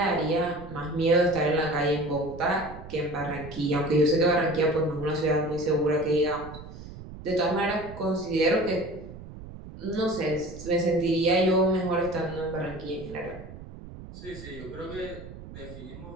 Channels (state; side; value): noise; right; rumble, 14 dB below the sound